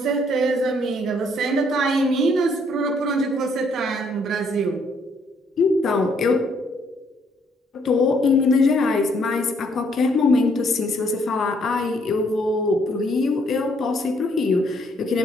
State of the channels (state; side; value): normal; both; correlation 0.68